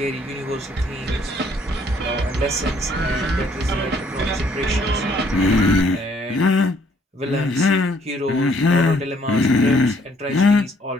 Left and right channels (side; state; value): both; normal; correlation 0.64